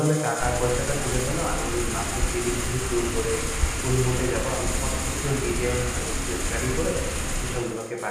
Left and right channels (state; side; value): identical; both; correlation 1.00